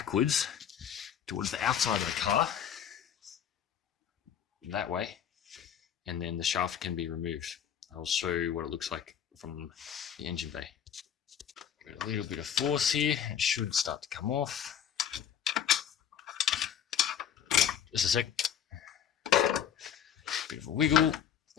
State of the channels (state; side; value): quieter; right; 8.9 dB